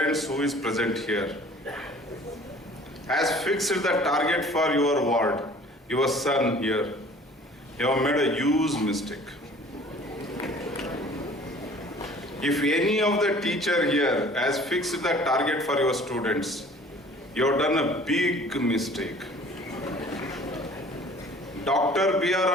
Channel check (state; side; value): normal; both; correlation 0.50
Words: who is present here has fixed the target for your ward, your son here, you have made a huge mistake. If any of the teacher here has fixed the target for your students, you have done a big mistake. Dr.